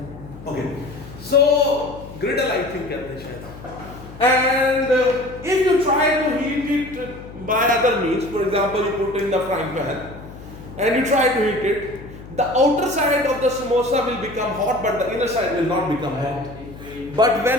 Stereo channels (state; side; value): noise; left; hum, 16 dB below the sound